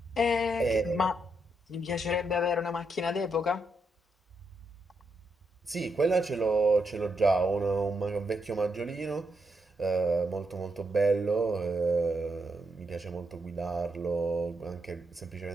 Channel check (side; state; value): both; normal; correlation 0.81